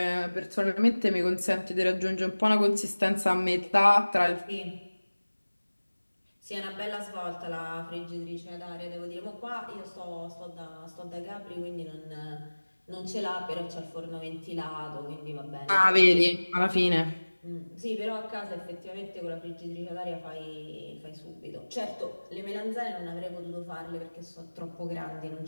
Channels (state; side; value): inverted; both; correlation -1.00